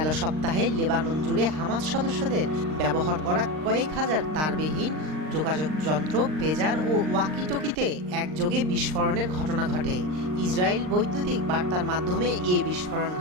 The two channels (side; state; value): left; late; 39 ms